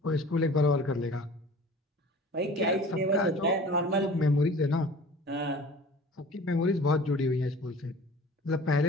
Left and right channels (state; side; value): normal; both; correlation 0.43